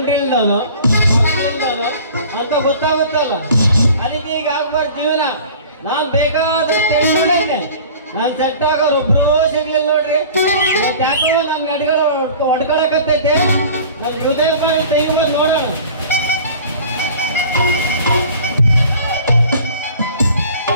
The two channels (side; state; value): both; inverted; correlation -0.44